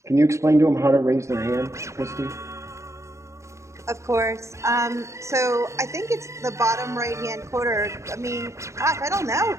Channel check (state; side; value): late; left; 0.14 ms